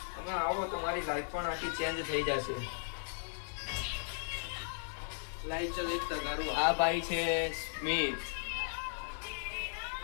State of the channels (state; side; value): silent; right; 53 dB below the other